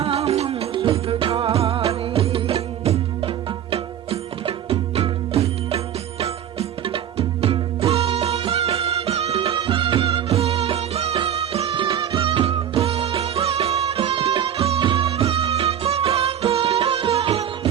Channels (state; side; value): quieter; left; 9.9 dB